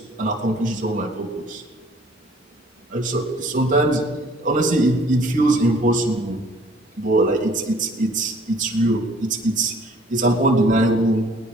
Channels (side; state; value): both; normal; correlation 0.56